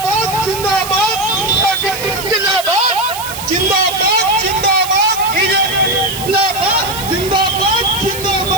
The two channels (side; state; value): right; noise; hiss, 10 dB below the sound